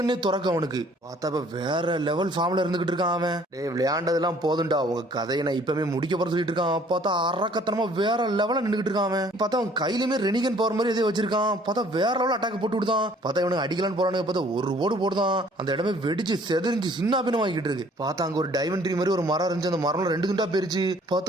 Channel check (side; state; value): both; normal; correlation 0.57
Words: துறக்க அவனுக்கு. பார்த்தா வேற லெவல் ஃபார்ம்ல இருந்துகிட்டு இருக்கான் அவன். டே விளையாண்டதெல்லாம் போதும்டா, உங்க கதையை நான் இப்பவுமே முடிக்க போற சொல்லிட்டு இருக்கான். பார்த்தா அரக்கத்தனமா வேற லெவல நின்றுகிட்டு இருக்கான் அவன். பார்த்தா அவன் கையிலுமே ரெனிகன் பவர் மாதிரி எதோ வச்சிருக்கான். பார்த்தா வேற லெவல் அட்டாக் போட்டு விடுதான். பார்த்தா இவனுக்கு அடிக்கலான்னு போறானுங்க. பார்த்தா ஒரு ஓடு போடுதான். அந்த இடமே வெடிச்சு செதறிஞ்சு சின்ன பின்னம் வாங்கிட்டு இருக்கு. பார்த்தா அங்க ஒரு டைமண்ட் ட்ரீ மாதிரி ஒரு மரம் இருந்துச்சு. அந்த மரம் 2 துண்டா போயிருச்சு.